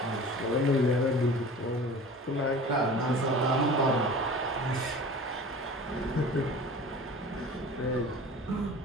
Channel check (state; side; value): normal; both; correlation 0.40